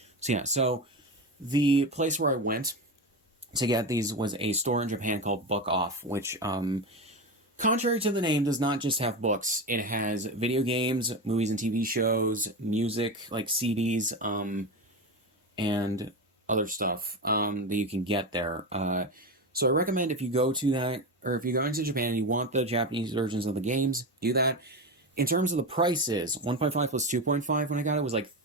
So yeah, so the place where I went to get these was a store in Japan called Book Off, which, contrary to the name, does not just have books. It has video games, movies and TV shows, music, like CDs, and other stuff that you can get there. So I recommend if you go to that, or if you go into Japan and you want the Japanese versions of the games, do that. In terms of the prices, 1.5 plus 2.5 when I got it was like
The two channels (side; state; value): both; normal; correlation 0.19